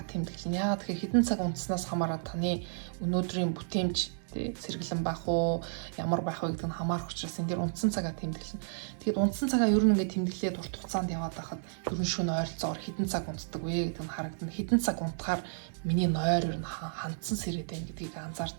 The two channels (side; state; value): left; silent; digital silence